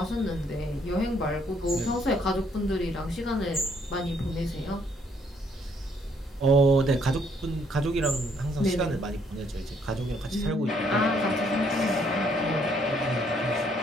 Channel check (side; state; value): both; normal; correlation 0.68